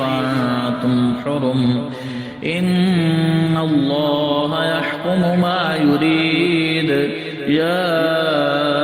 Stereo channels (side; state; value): both; identical; correlation 1.00